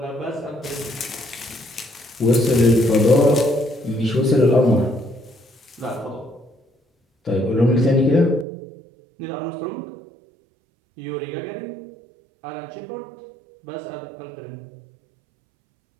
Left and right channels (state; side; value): drops out; left; at 8.5 s